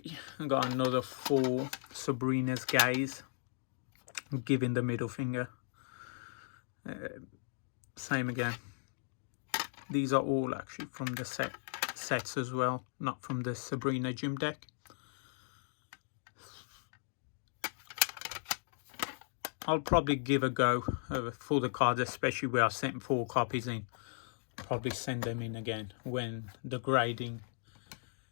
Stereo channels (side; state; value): right; silent; digital silence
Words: I got another 4 Sabrina's Gaze, giving the middle finger. Same again. These are all actually from the sets as well, not from the Sabrina gym deck. I'll probably give a go for the cards, especially where I sent 4 copies in. Probably send them in again when the grading